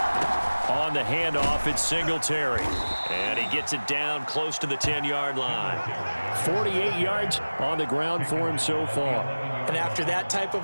On the handoff, it's Singletary. And he gets it down close to the 10-yard line. 48 yards on the ground for him so far. And after that type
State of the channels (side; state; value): both; inverted; correlation -1.00